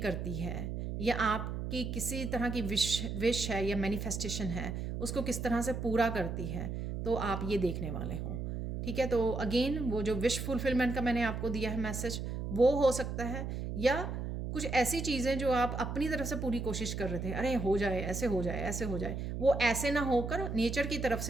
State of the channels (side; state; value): right; noise; hum, 4 dB below the sound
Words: करती है, या आपकी किसी तरह की विश है या मैनिफेस्टेशन है उसको किस तरह से पूरा करती है, तो आप ये देखने वाले हो, ठीक है। तो अगेन वो जो विश फुलफिलमेंट का मैंने आपको दिया है मैसेज, वो हो सकता है, या कुछ ऐसी चीज़ें जो आप अपनी तरफ से पूरी कोशिश कर रहे थे, अरे हो जाए, ऐसे हो जाए, ऐसे हो जाए, वो ऐसे ना होकर नेचर की तरफ